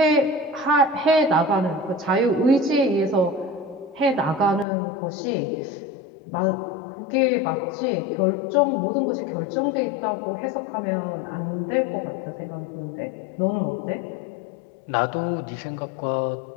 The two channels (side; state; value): right; drops out; at 4.7 s